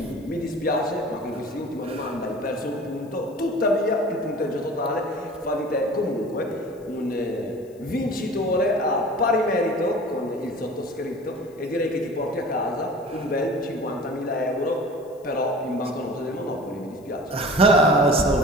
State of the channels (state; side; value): noise; left; hiss, 30 dB below the sound